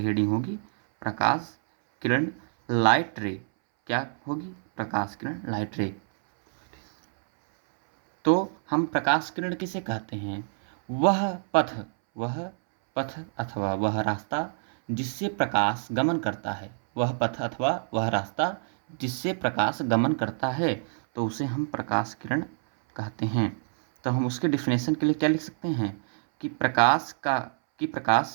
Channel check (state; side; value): silent; left; 60 dB below the other